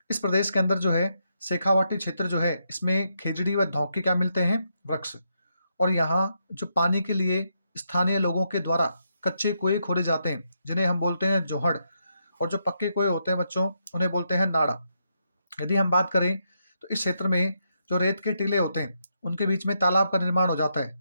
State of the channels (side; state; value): both; inverted; correlation -0.80